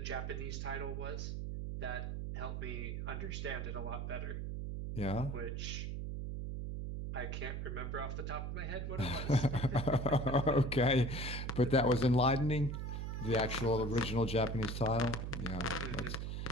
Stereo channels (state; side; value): noise; right; hum, 4 dB below the sound